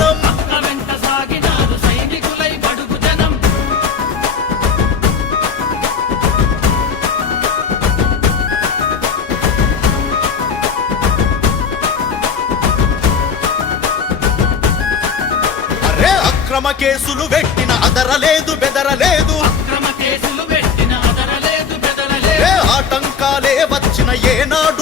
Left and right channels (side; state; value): right; quieter; 6.1 dB